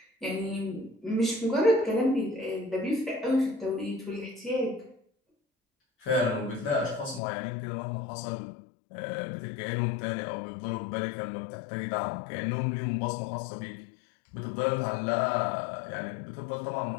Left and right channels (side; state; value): right; drops out; at 7.2 s